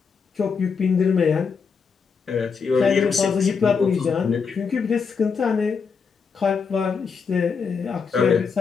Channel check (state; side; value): quieter; right; 5.7 dB